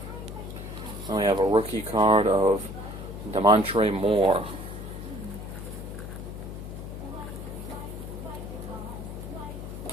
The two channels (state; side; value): noise; left; hum, 9 dB below the sound